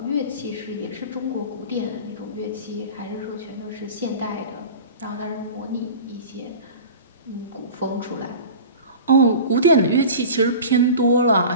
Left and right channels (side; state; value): both; inverted; correlation -0.37